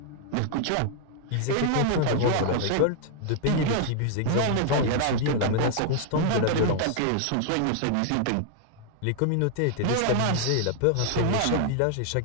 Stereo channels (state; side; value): different; both; correlation 0.00